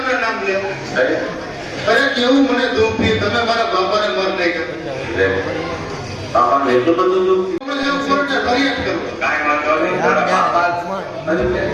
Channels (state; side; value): identical; both; correlation 1.00